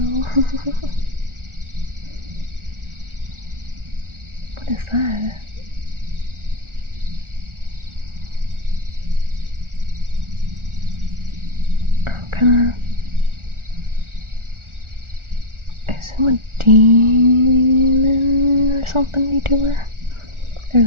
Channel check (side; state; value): left; late; 1.4 ms